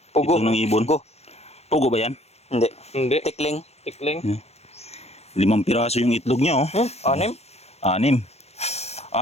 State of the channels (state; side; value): late; right; 0.31 ms